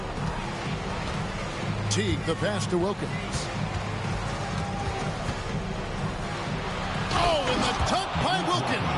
Teague, the pass to Wilkins. Oh, and the dunk by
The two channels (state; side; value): identical; both; correlation 1.00